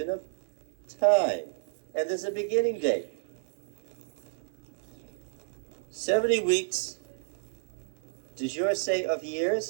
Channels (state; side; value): silent; left; 57 dB below the other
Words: of time. And there's a beginning date. 70 weeks, does yours say of